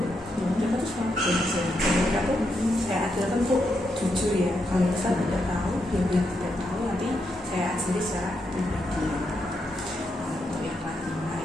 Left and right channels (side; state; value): both; normal; correlation 0.82